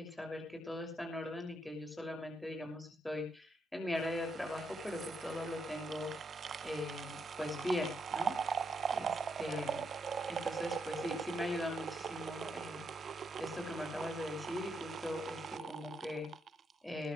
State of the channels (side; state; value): both; normal; correlation 0.78